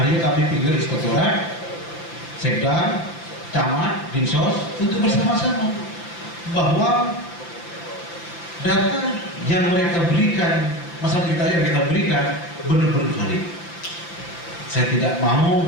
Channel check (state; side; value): late; right; 5.9 ms